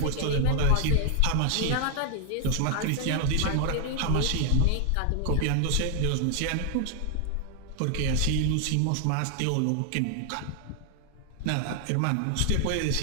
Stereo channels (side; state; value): both; different; correlation 0.00